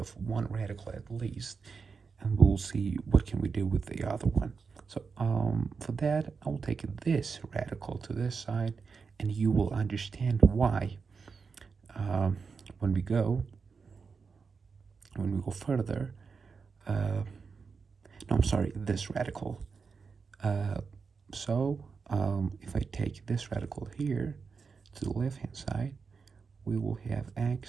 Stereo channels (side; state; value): left; quieter; 5.2 dB